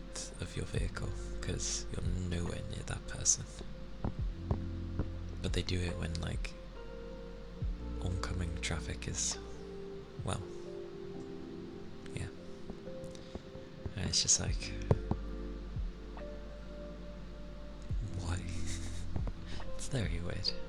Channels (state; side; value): identical; both; correlation 1.00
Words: of your vehicle? Because you're nowhere near that person. But they do it when like oncoming traffic is, well, yeah. And it's just like, why? It's very weird.